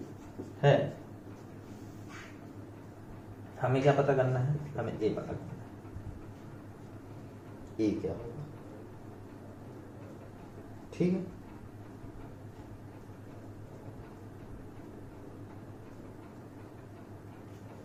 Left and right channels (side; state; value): both; identical; correlation 1.00